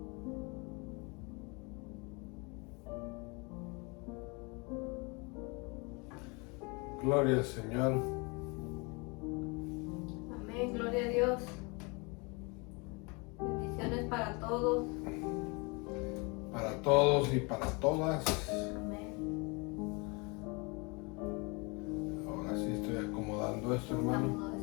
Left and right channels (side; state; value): right; quieter; 29.5 dB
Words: Gloria al Señor. Amén, gloria a Dios. Bendiciones para todos. Para todos y para todas. Amén. Ahora sí estoy acomodando esto, hermano.